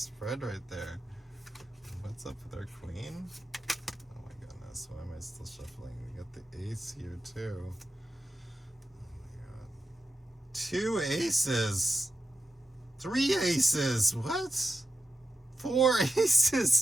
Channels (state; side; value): normal; both; correlation 0.90